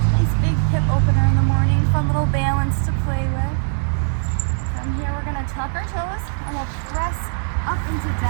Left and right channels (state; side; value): silent; left; 61 dB below the other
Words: Nice big hip opener in the morning, fun little balance to play with. From here we're going to tuck our toes, into